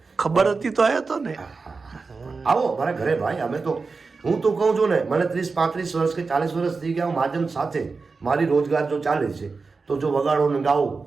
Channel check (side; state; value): left; quieter; 4.4 dB